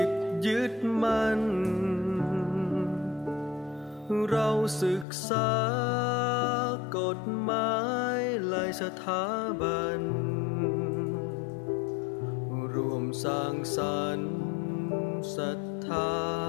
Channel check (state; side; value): drops out; right; at 5.1 s